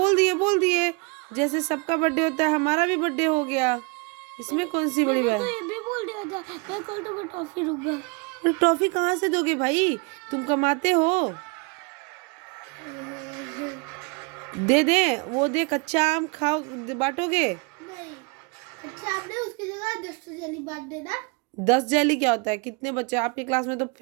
बोल दिए जैसे सबका बर्थडे होता है हमारा भी बर्थडे हो गया, इसमें कौन सी बड़ी बात। तो ये भी बोल दिया था मैं कल तुम्हें टॉफी दूंगा। अरे टॉफी कहाँ से दोगे भाई, तुम कमाते हो। दे दे, वो दे, कच्चा आम खाओ, बांटोगे। नहीं, अच्छा आपने उसकी जगह 10 जेली बांट देना। 10 जेली क्या होता है, कितने बच्चे आपकी क्लास में, तो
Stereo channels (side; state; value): left; quieter; 30.2 dB